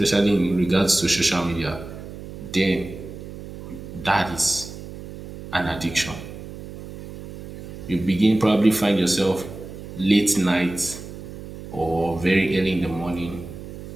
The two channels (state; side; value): noise; right; hum, 12 dB below the sound